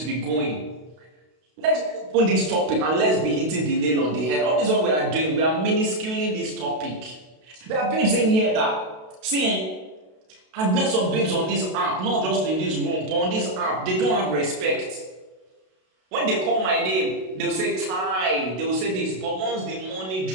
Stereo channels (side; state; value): left; late; 32 ms